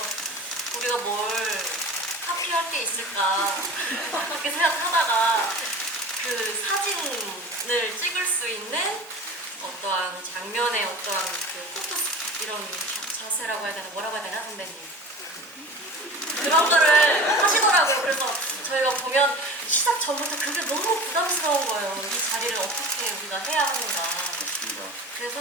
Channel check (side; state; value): both; normal; correlation 0.37